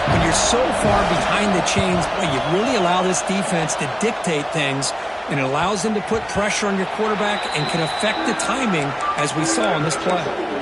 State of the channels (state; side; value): identical; both; correlation 1.00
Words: when you're so far behind the chains, boy, you really allow this defense to dictate things, and it allows them to put pressure on your quarterback and can affect the timing, as we saw on this play.